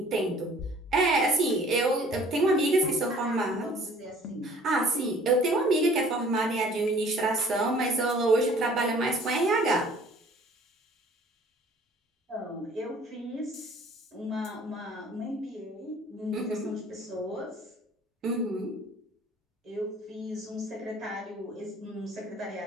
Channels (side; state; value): both; normal; correlation 0.53